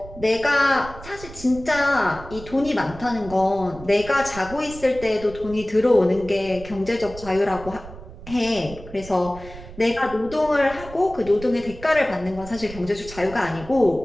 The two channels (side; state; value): right; noise; rumble, 15 dB below the sound